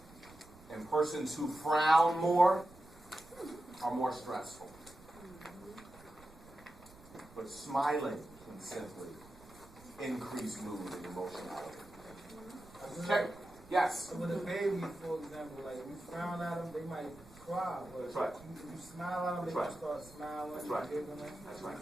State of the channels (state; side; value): noise; right; rumble, 23 dB below the sound